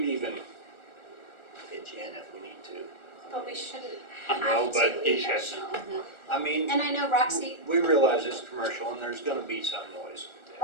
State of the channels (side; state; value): right; late; 1.4 ms